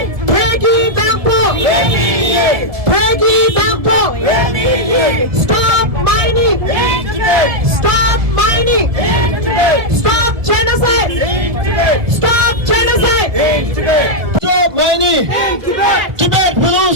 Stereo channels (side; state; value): left; late; 1.9 ms